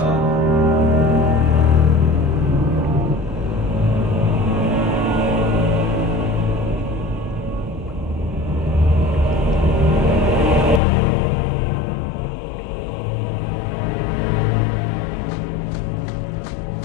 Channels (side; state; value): right; drops out; at 10.8 s